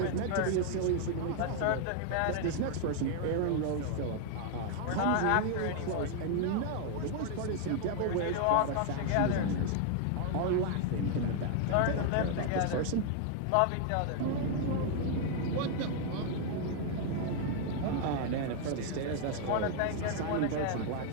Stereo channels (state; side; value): different; both; correlation 0.00